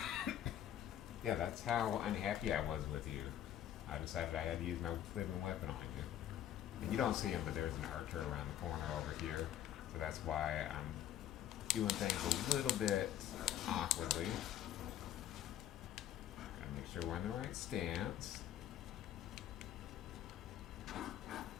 Yeah, that's how unhappy I was with you. I decided I had to use my living weapon on you. And you don't see him, but there's an archer around the corner over here. So that's why I'm doing things a little bit awkwardly. Gotta make sure we're in the right stance.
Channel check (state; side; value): quieter; right; 11.3 dB